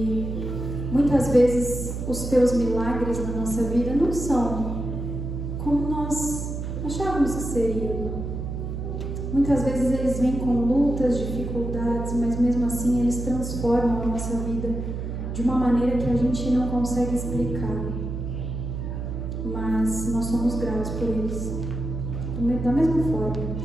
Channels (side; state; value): right; noise; hum, 5 dB below the sound